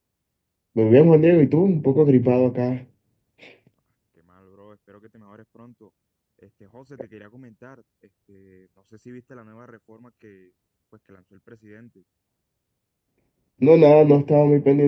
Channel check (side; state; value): both; identical; correlation 1.00